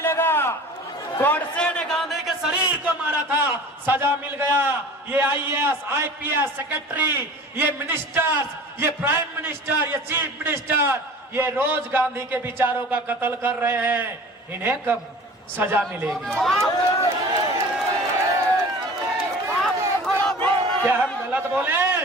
गोडसे ने गांधी के शरीर को मारा था, सजा मिल गया। ये आईएएस आईपीएस सेक्रेटरी, ये मिनिस्टर्स, ये प्राइम मिनिस्टर, ये चीफ मिनिस्टर, ये रोज गांधी के विचारों का कत्ल कर रहे हैं, इन्हें कब सजा मिलेगी? क्या हम गलत बोले?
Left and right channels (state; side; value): normal; both; correlation 0.41